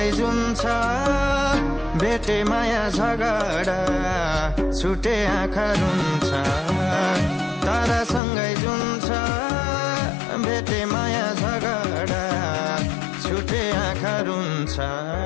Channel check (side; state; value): right; drops out; at 8.2 s